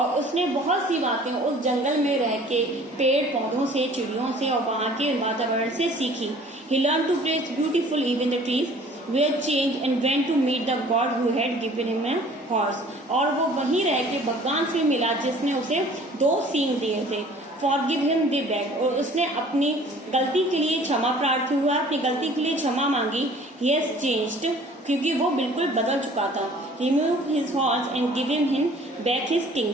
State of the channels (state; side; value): normal; both; correlation 0.51